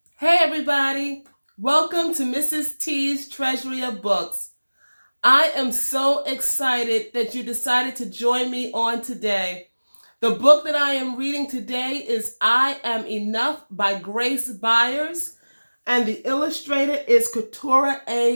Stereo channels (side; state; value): both; inverted; correlation -1.00